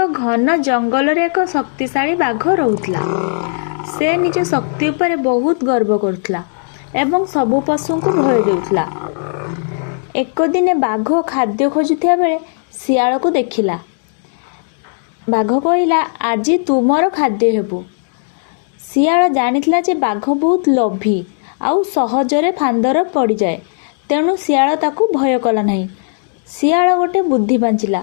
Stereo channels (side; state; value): right; silent; digital silence